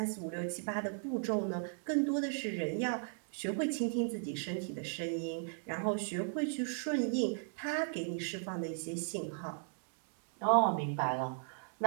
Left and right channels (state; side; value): silent; left; digital silence